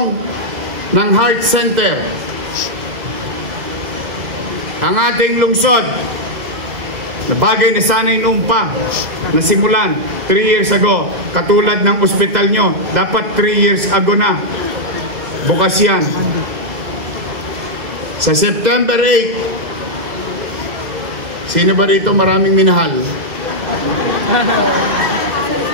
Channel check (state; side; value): late; left; 2.1 ms